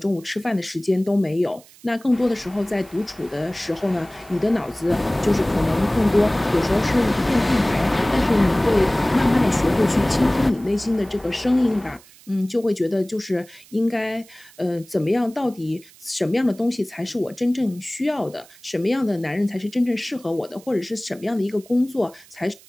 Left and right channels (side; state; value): right; noise; hiss, 24 dB below the sound